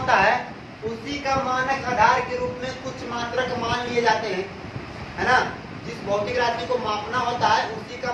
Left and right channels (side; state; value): both; identical; correlation 1.00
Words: है उसी का मानक आधार के रूप में कुछ मात्रक मान लिए जाते हैं, है ना। जिस भौतिक राशि को मापना होता है उसी का